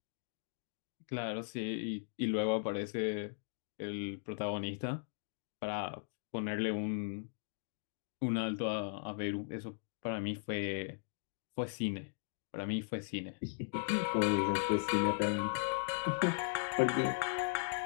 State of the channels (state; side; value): silent; right; digital silence